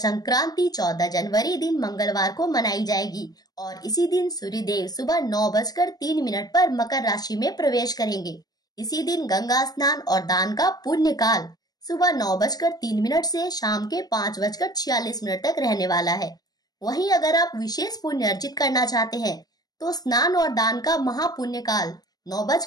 14 जनवरी दिन मंगलवार को मनाई जाएगी और इसी दिन सूर्यदेव सुबह 9:03 पर मकर राशि में प्रवेश करेंगे। इसी दिन गंगा स्नान और दान का पुण्य काल सुबह 9:03 से शाम के 5:46 तक रहने वाला है। वहीं अगर आप विशेष पुण्य अर्जित करना चाहते हैं तो स्नान और दान का महापुण्य काल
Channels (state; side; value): late; right; 0.19 ms